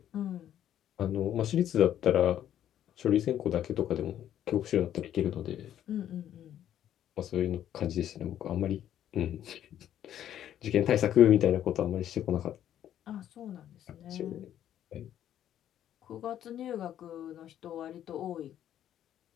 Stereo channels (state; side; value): quieter; right; 10.9 dB